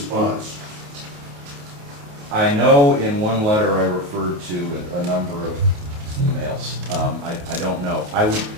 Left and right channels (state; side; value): late; left; 28 ms